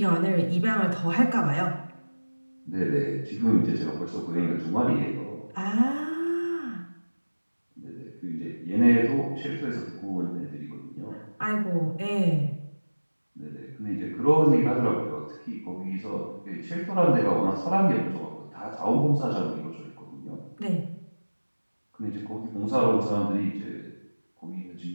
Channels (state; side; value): inverted; both; correlation -1.00